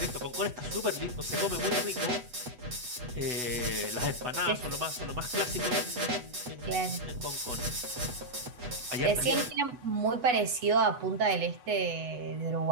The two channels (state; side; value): late; left; 8.1 ms